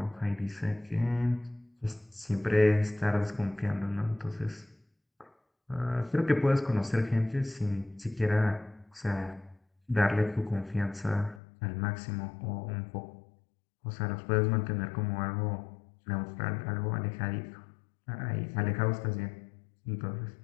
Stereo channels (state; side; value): drops out; right; at 11.4 s